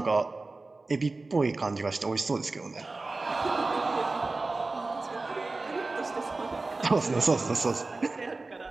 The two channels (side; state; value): left; quieter; 3.4 dB